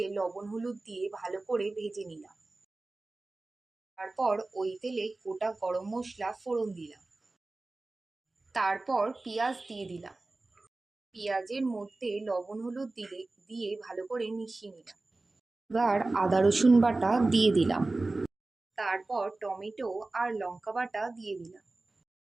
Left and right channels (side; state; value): left; quieter; 3.2 dB